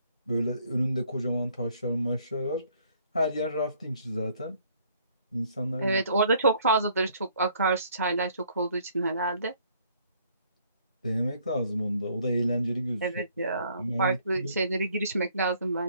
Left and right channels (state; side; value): inverted; both; correlation -0.63